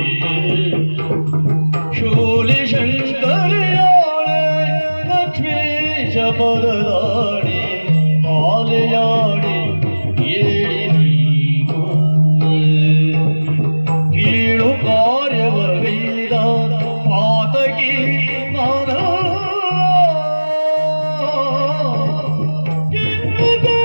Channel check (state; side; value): inverted; both; correlation -1.00